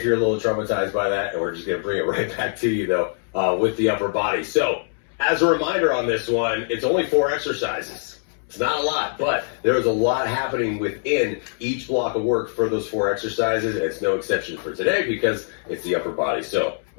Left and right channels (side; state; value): right; silent; 63 dB below the other